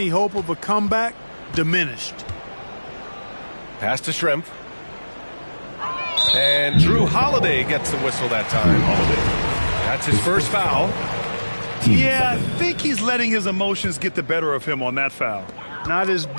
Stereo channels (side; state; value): both; inverted; correlation -1.00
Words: hope of a comeback diminished. Pass to Shrimp. And Drew Holiday gets the whistle that time. That's his first foul. Yeah, I think he's letting his emotions get the better of him on that foul. Not his